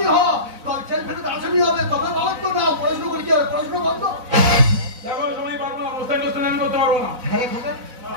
হ, তোর জেল ফেরত আসামি হবে, তবে বাবার তো নাও। পড়াশোনা করে কি হবে? পড়াশোনা বন্ধ। দেখো সময় পারবো না, মোস্তান আমি করতে পারবো না। হ্যাঁ খোকা,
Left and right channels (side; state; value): left; late; 4.0 ms